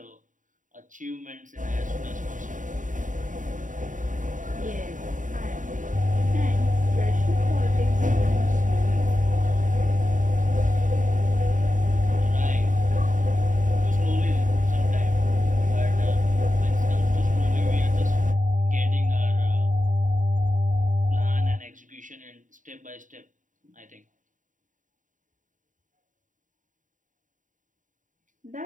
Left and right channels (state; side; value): late; left; 0.37 ms